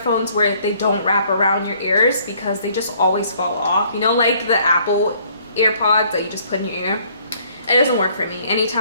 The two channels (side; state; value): both; inverted; correlation -0.61